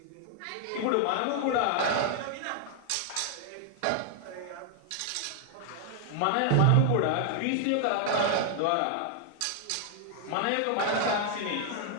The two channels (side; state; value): both; different; correlation 0.00